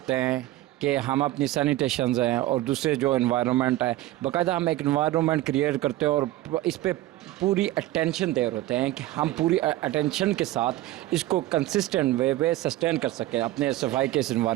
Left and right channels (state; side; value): quieter; left; 15.8 dB